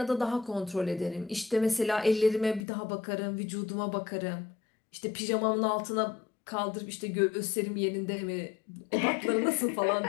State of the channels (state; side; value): drops out; right; at 2.6 s